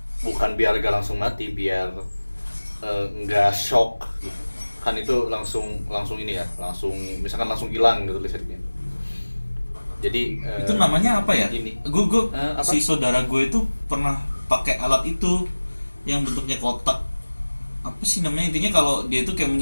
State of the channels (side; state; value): both; inverted; correlation -1.00